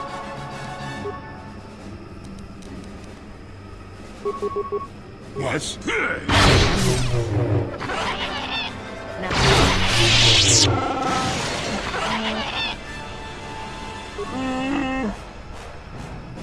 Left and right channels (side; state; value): both; identical; correlation 1.00